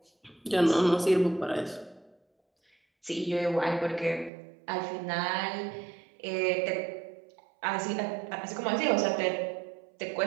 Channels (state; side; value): drops out; left; at 4.3 s